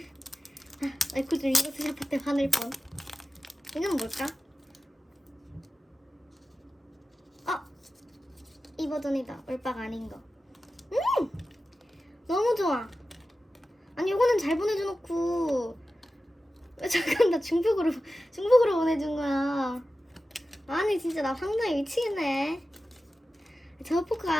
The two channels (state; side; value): normal; both; correlation 0.94